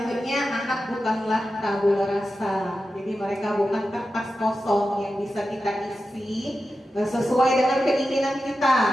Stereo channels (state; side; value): normal; both; correlation 0.92